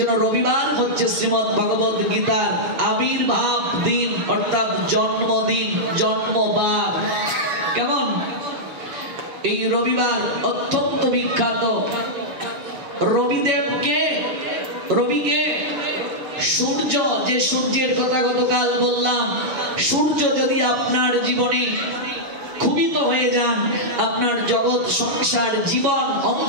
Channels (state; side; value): late; left; 7.1 ms